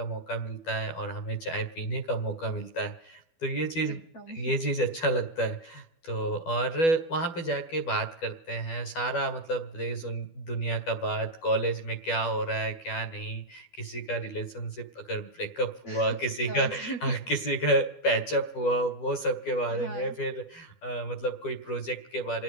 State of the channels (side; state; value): right; late; 12 ms